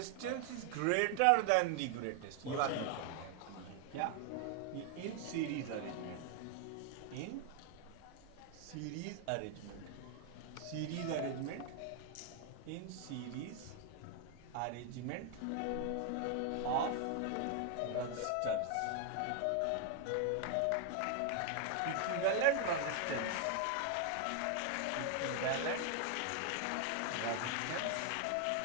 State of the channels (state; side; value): different; both; correlation 0.01